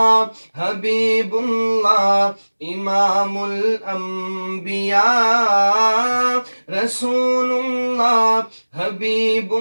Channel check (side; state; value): both; inverted; correlation -1.00